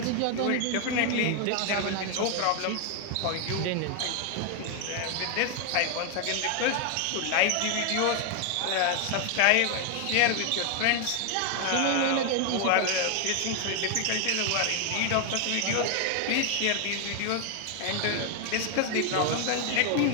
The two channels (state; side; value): different; both; correlation 0.01